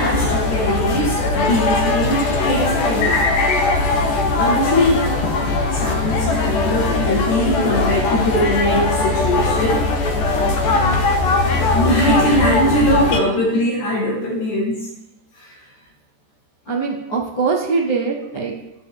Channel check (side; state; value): right; late; 14 ms